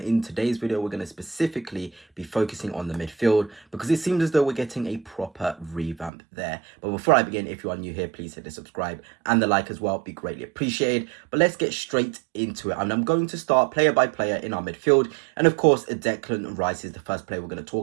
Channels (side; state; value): left; drops out; at 6.1 s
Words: in today's video, we're going to specifically be focusing on the midfield because it seems as though we're getting a proper revamp there. But before I begin, if you are new here, please hit the subscribe and the like as well. Be greatly appreciated. But let's get straight into it. And I'm going to start player by player in our midfield. And of course, Declan Rice is the first player we're going to